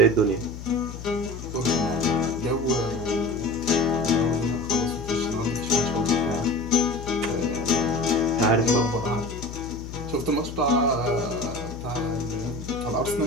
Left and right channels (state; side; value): noise; left; hum, 11 dB below the sound